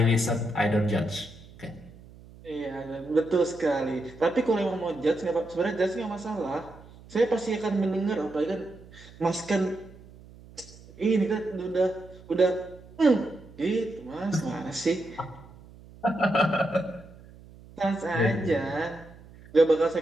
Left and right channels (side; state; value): right; noise; hum, 21 dB below the sound